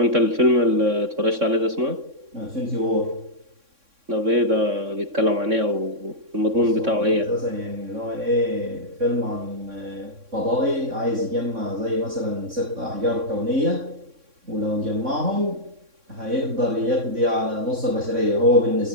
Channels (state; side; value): late; left; 3.6 ms